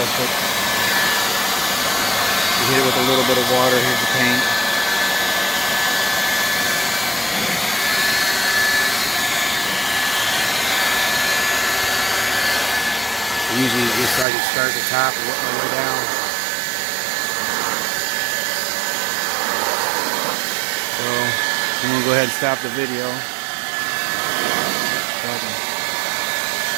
You hit it with a little bit of water. Here's the paint. Usually you start at the top and work my way down. So I'm going to go ahead and stop the video. So I can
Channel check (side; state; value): left; drops out; at 14.2 s